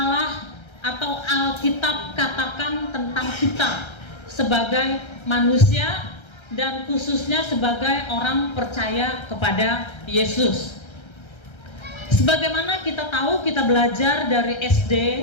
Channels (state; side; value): late; right; 1.3 ms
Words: atau Alkitab katakan tentang kita sebagai manusia dan khususnya sebagai orang percaya kepada Yesus. Sebagaimana kita tahu, kita belajar dari SD,